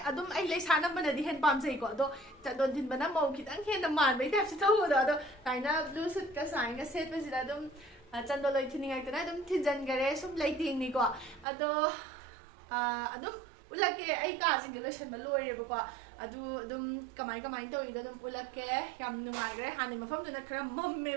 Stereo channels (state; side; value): drops out; left; at 11.5 s